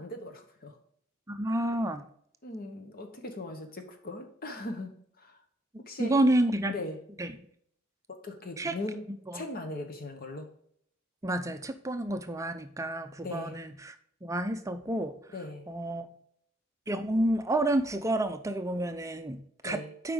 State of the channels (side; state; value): both; normal; correlation 0.70